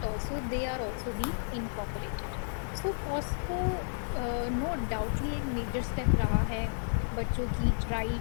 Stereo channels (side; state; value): right; silent; 56 dB below the other